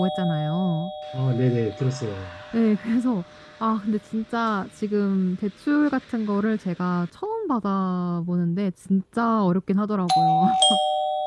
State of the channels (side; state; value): both; identical; correlation 1.00